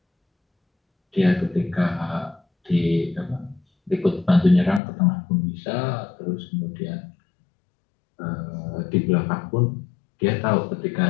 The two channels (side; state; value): right; drops out; at 4.8 s